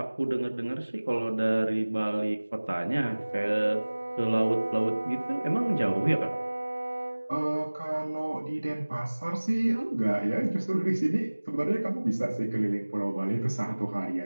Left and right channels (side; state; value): both; inverted; correlation -1.00